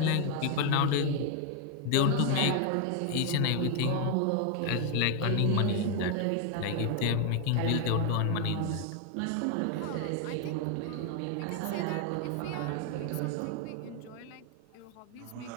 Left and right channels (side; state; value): both; different; correlation 0.00